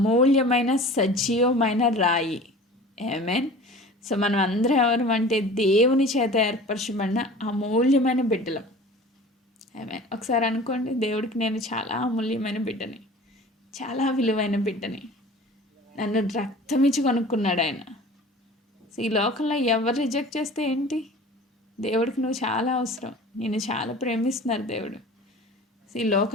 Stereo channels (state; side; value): normal; both; correlation 0.41